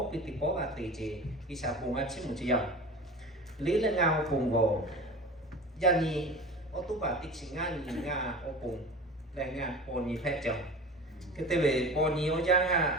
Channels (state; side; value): normal; both; correlation 0.35